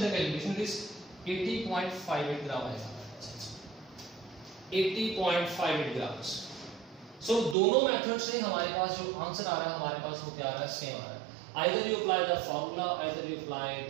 the calculation, it is 80.58 gram आएगा, 80.58 ग्राम्स। सो दोनों मेथड से हमारे पास जो आंसर आ रहा है हमारे पास वो क्या आ रहा है, सेम आ रहा है। Either you apply the formula, either you apply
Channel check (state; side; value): drops out; left; at 7.6 s